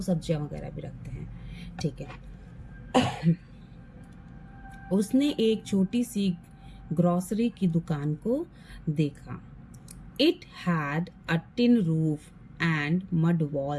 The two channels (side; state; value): both; identical; correlation 1.00